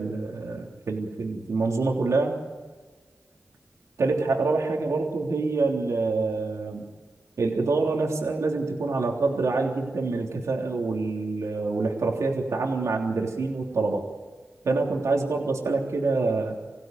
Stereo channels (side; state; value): left; quieter; 3.1 dB